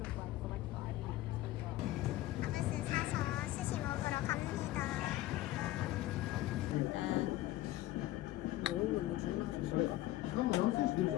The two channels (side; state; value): right; quieter; 16.0 dB